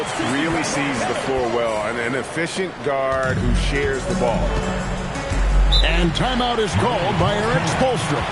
really sees the floor well. An efficient guard who shares the ball. And timeout is called by Eric Spoelstra.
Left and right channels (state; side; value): identical; both; correlation 1.00